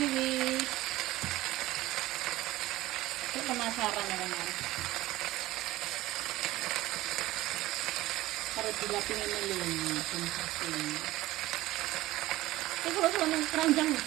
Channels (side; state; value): left; quieter; 17.1 dB